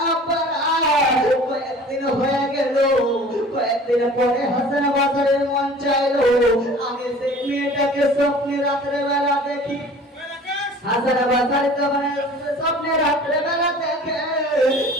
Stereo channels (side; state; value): both; normal; correlation 0.45